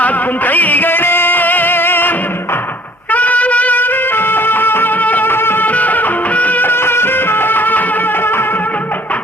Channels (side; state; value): both; normal; correlation 0.55